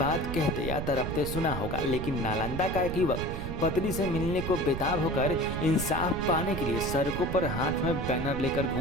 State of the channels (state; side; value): noise; right; rumble, 5 dB below the sound